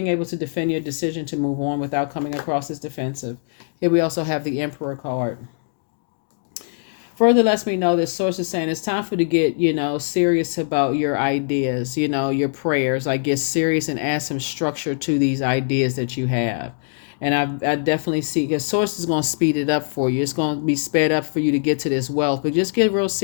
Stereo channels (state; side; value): silent; right; digital silence